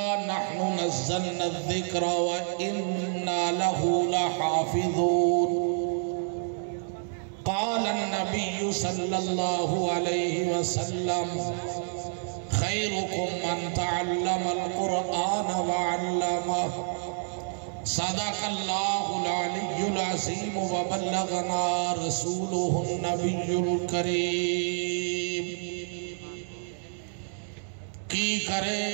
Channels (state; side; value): silent; left; digital silence